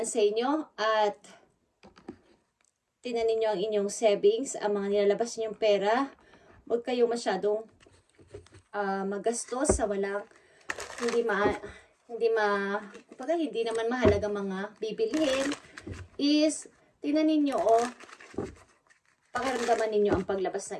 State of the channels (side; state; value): both; identical; correlation 1.00